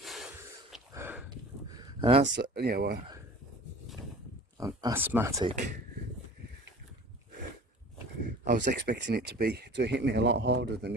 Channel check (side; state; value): both; normal; correlation 0.42